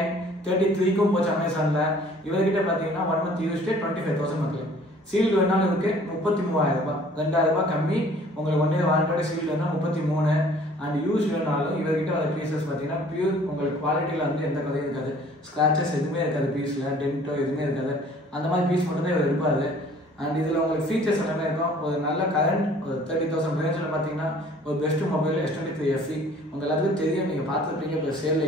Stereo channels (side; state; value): both; normal; correlation 0.53